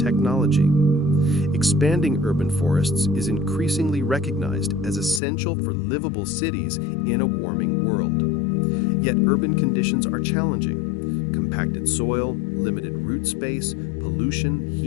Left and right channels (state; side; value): drops out; right; at 5.2 s